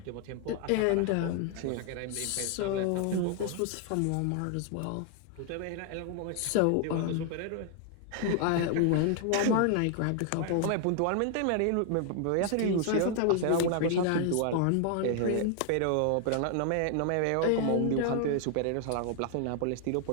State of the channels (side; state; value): both; different; correlation 0.00